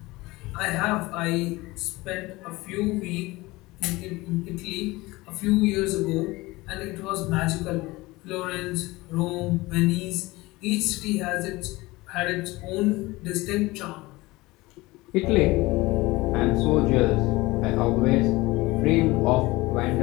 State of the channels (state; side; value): quieter; right; 21.0 dB